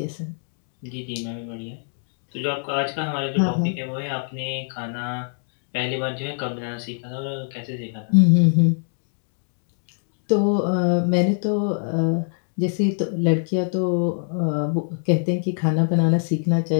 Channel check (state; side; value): silent; right; digital silence